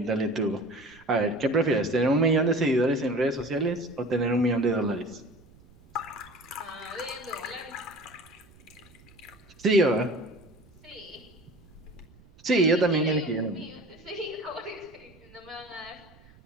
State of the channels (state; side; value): noise; right; rumble, 26 dB below the sound